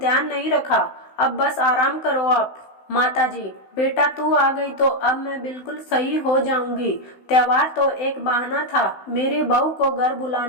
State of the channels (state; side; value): late; right; 16 ms